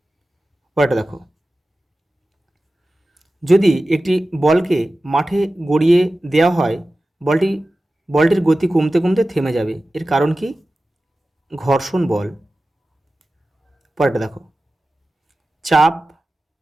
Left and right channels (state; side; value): normal; both; correlation 0.95